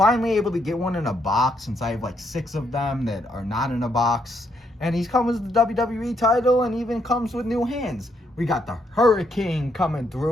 able to get one in a box, since I have like 6 of them that are not in a box. And he's comes with the WWE title, and even comes with new hands. We got the Hurricane coming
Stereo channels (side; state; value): both; normal; correlation 0.75